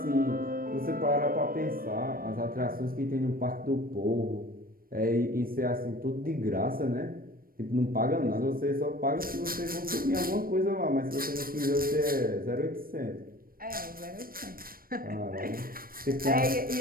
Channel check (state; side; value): late; left; 0.42 ms